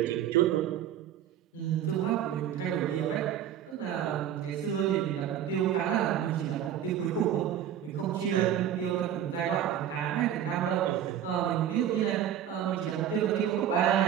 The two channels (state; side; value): quieter; left; 10.2 dB